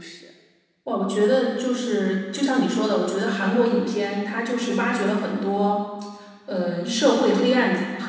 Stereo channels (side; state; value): both; identical; correlation 1.00